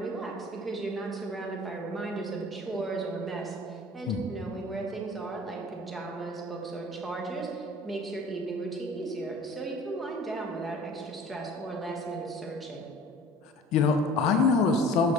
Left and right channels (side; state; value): both; normal; correlation 0.46